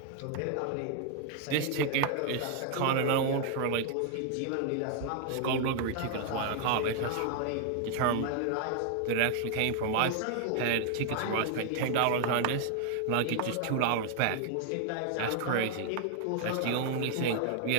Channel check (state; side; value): different; both; correlation 0.00